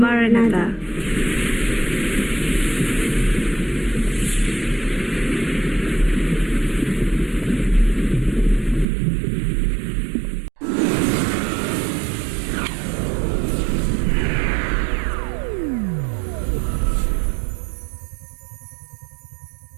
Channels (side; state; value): left; drops out; at 8.8 s